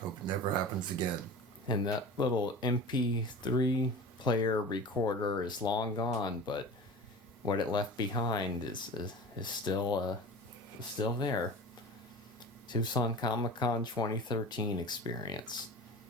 Hope it never happens again. And that little MP3 player recorder is long gone, but what it left behind is still there. Tucson Comic-Con 2013 experience.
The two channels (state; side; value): normal; both; correlation 0.35